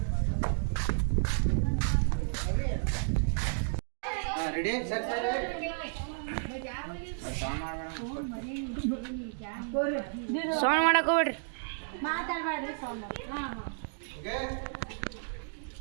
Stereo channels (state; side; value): silent; left; digital silence